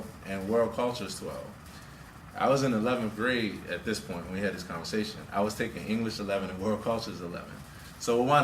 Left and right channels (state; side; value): identical; both; correlation 1.00